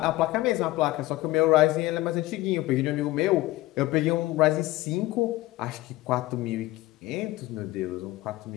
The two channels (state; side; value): quieter; right; 17.9 dB